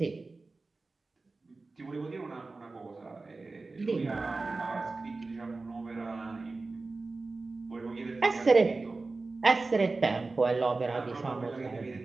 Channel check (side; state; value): left; quieter; 3.6 dB